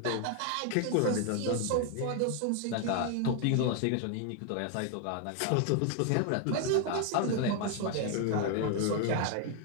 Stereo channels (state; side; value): different; both; correlation 0.00